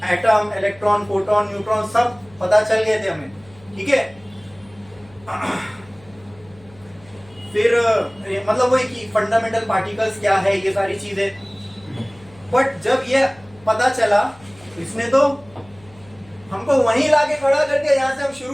atom, electron, proton, neutron सब पता चल गए थे हमें। ठीक है, फिर मतलब वही कि फंडामेंटल पार्टिकल्स क्या है, ये सारी चीजें। बट जब ये पता चला, इसने तो हमको वहीं लाके खड़ा कर दिया जहां से हम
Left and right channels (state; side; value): noise; left; hum, 25 dB below the sound